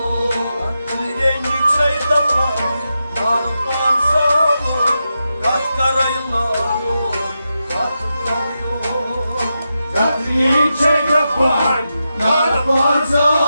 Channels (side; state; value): both; inverted; correlation -0.88